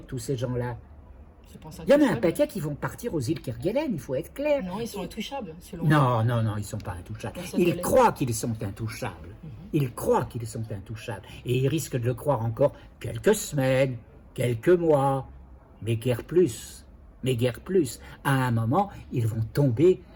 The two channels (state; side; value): identical; both; correlation 1.00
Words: tous ces gens-là? Il y en a un paquet qui vont partir aux îles Kerguelen, il faut être clair. Non, ils sont intouchables, selon Non, ils ne sont pas intouchables. Ils croient qu'ils sont intouchables. Ils croient qu'ils sont intouchables. Et ils risquent de le croire encore quelques semaines, quelques mois, mais guère plus. À un moment, ils vont tomber